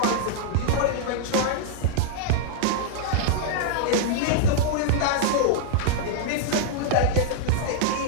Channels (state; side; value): different; both; correlation -0.01